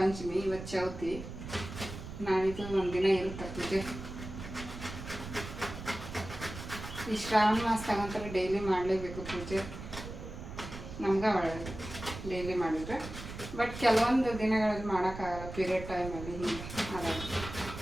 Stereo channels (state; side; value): noise; right; rumble, 10 dB below the sound